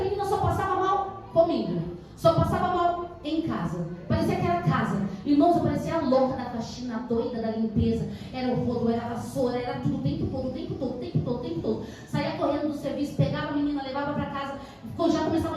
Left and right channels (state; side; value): identical; both; correlation 1.00